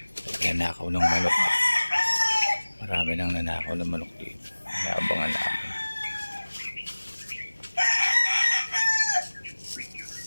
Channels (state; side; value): inverted; both; correlation -1.00